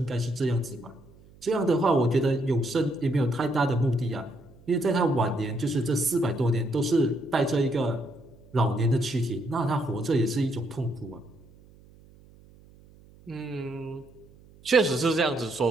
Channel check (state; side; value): noise; right; hum, 25 dB below the sound